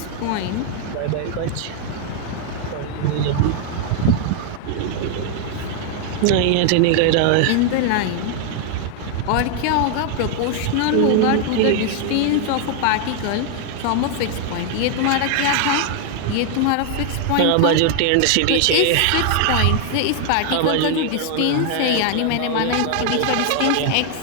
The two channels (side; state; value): both; different; correlation 0.00